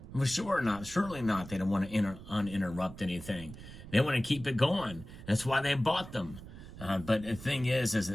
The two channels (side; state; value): right; noise; rumble, 14 dB below the sound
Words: For sure not. Surely not. They don't want to uninterrupt anything. They want to keep it going. That's why they bought them. But the thing is